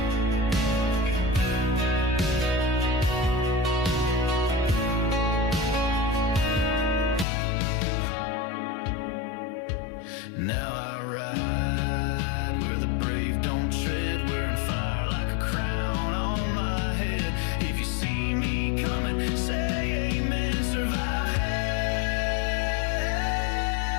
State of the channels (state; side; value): drops out; right; at 7.2 s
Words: Now I ride where the brave don't tread, wearing fire like a crown on my head. If you see me coming, say amen, survive hell.